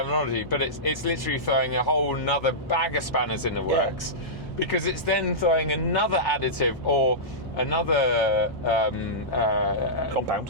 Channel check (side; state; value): both; normal; correlation -0.15